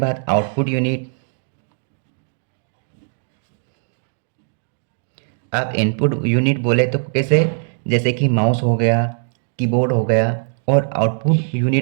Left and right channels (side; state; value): left; silent; digital silence